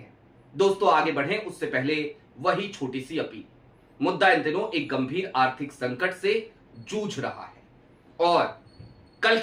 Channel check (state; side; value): identical; both; correlation 1.00